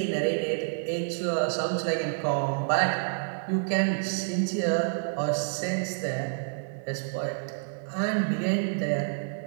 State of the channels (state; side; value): silent; left; 59 dB below the other